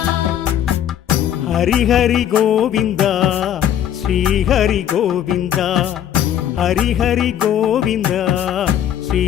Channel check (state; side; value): quieter; right; 10.3 dB